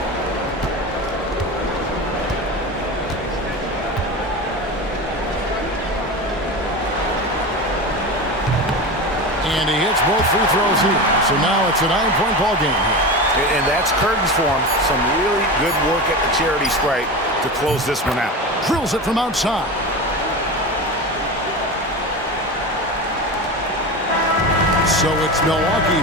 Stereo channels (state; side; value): normal; both; correlation 0.25